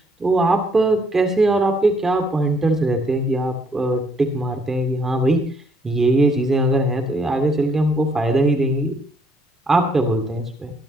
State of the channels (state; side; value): normal; both; correlation 0.68